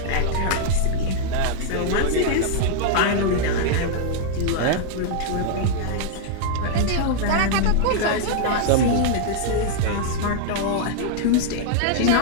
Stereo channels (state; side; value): different; both; correlation -0.01